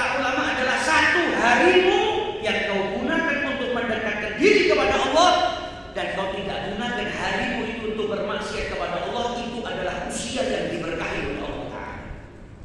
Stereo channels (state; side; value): identical; both; correlation 1.00